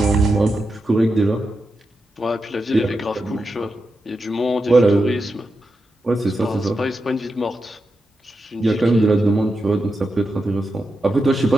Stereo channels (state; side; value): normal; both; correlation 0.88